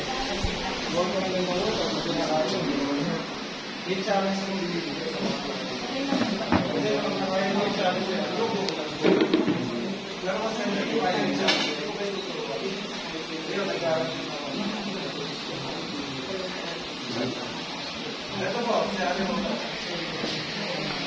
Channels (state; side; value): identical; both; correlation 1.00